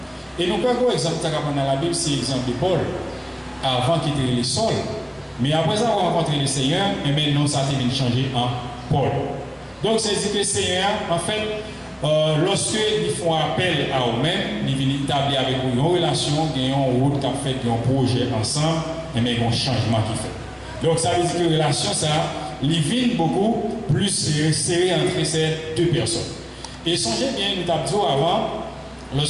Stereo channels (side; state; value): both; identical; correlation 1.00